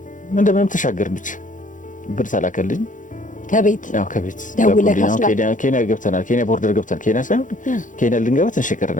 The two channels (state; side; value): late; right; 0.37 ms